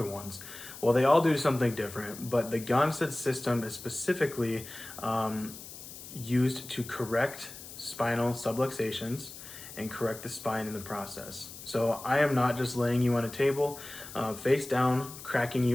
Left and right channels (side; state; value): left; noise; hiss, 14 dB below the sound